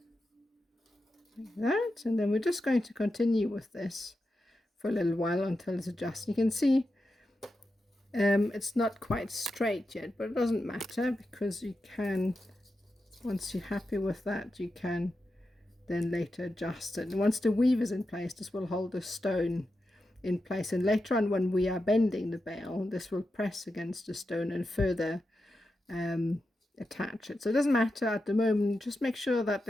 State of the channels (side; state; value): both; normal; correlation 0.89